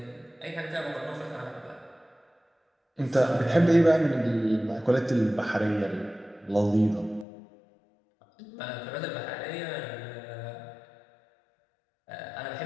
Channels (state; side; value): drops out; right; at 7.2 s